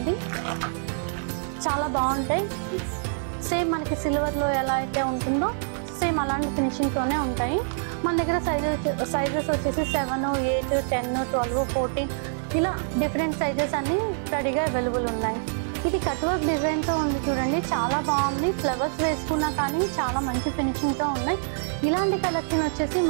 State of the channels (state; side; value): silent; left; 60 dB below the other